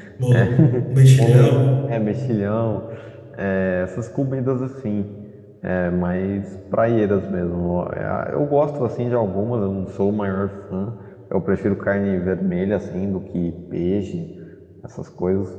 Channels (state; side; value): identical; both; correlation 1.00